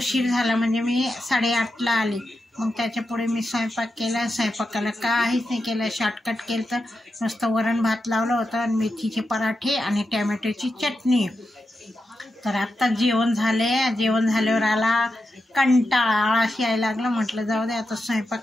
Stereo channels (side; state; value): both; normal; correlation 0.88